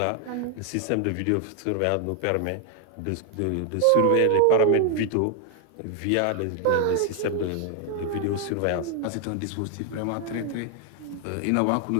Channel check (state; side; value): different; both; correlation 0.00